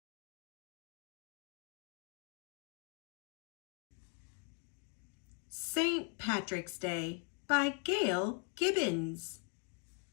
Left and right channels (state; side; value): quieter; right; 39.3 dB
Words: St. Patrick's Day by Gail Gibbons.